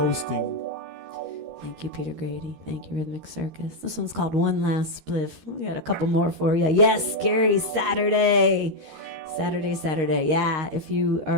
Thank you, Peter Grady. Thank you, Rhythmic Circus. This one's called One Last Spliff. We got a couple more for you. Yes, Gary, Saturday. Yeah, if you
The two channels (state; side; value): late; left; 13 ms